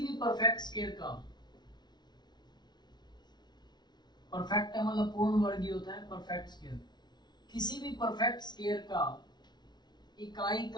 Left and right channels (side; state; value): right; late; 0.20 ms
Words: परफेक्ट स्केयर का, परफेक्ट है मतलब पूर्ण वर्ग होता है परफेक्ट स्केयर, किसी भी परफेक्ट स्केयर का इकाई